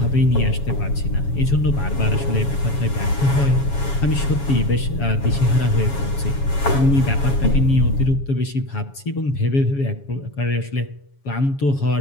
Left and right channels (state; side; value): late; right; 7.2 ms